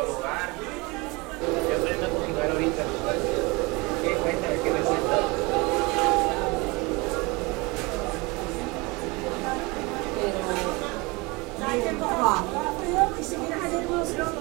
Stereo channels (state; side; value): quieter; left; 25.6 dB